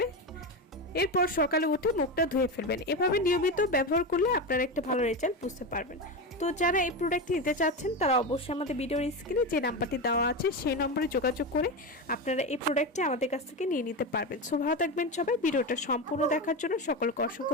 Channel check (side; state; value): both; normal; correlation 0.18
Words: এরপর সকালে উঠে মুখটা ধুয়ে ফেলবেন। এভাবে নিয়মিত ব্যবহার করলে আপনারা একটা ভালো রেজাল্ট বুঝতে পারবেন। তো যারা এই প্রোডাক্টটি নিতে চাচ্ছেন তারা অবশ্যই আমাদের ভিডিওর স্ক্রিনে যে নাম্বারটি দেওয়া আছে সেই নম্বরে যোগাযোগ করে আপনারা এই প্রোডাক্টটি আমাদের কাছ থেকে নিয়ে নিতে পারবেন। সো ভালো থাকবেন সবাই। ভিডিওটা সম্পূর্ণ দেখার জন্য সকলকে অসংখ্য